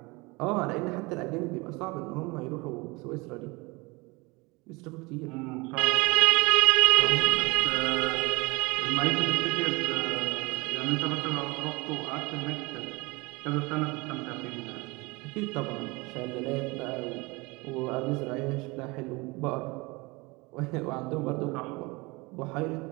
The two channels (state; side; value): quieter; left; 25.3 dB